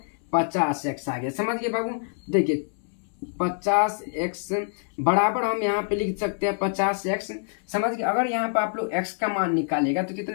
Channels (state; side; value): silent; right; 61 dB below the other